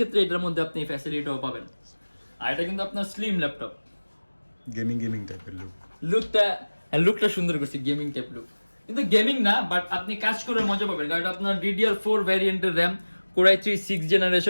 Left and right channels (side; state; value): both; inverted; correlation -1.00